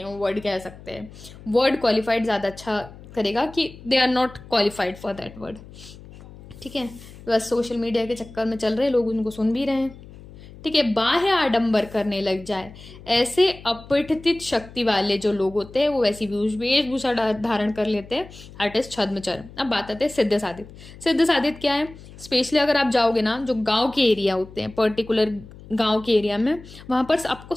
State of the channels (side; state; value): left; noise; hum, 18 dB below the sound